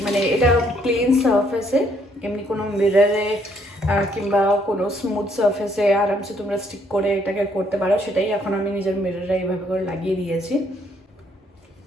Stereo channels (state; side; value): normal; both; correlation 0.68